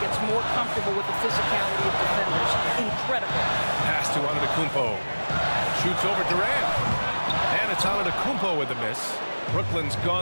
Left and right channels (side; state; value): both; inverted; correlation -1.00